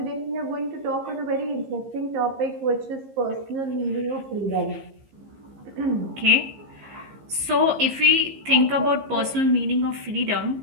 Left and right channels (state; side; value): late; left; 15 ms